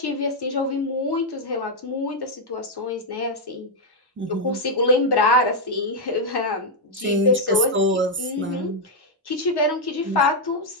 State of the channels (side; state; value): both; normal; correlation -0.01